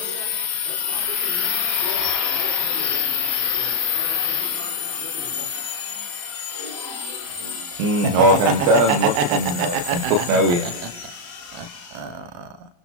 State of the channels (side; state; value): left; late; 34 ms